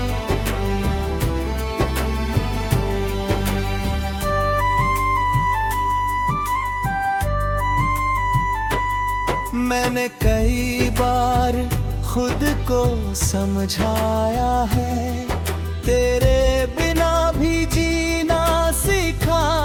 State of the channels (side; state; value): both; identical; correlation 1.00